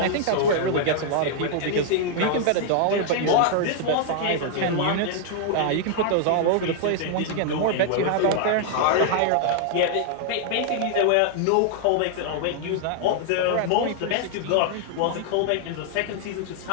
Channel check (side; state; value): both; different; correlation 0.00